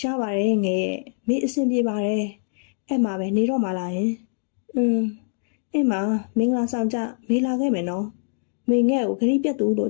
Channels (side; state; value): right; silent; digital silence